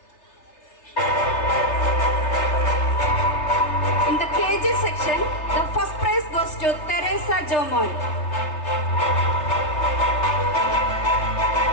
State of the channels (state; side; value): late; right; 3.3 ms